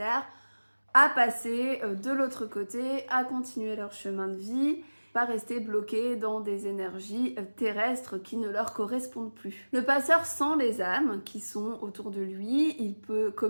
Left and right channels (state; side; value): inverted; both; correlation -1.00